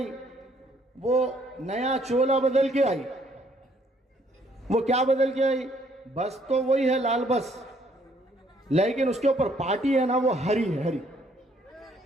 वो नया चोला बदल के आई। वो क्या बदल के आई? बस तो वही है, लाल बस, लेकिन उसके ऊपर पार्टी है ना, वो हरी है, हरी।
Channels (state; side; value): normal; both; correlation 0.66